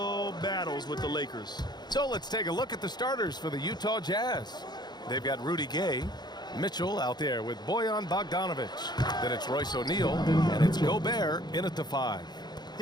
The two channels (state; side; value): late; right; 0.20 ms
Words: battles with the Lakers. So let's take a look at the starters for the Utah Jazz. They've got Rudy Gay, Mitchell out there with Bojan Bogdanovic. Then it's Royce O'Neal, and it's Gobert in at the 5.